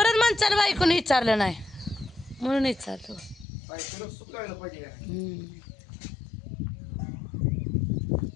माणसाला बायकोने विचारलं नाही म्हणून विचारलं बायकोला सुकायला पाहिजे का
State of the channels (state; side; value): drops out; right; at 3.5 s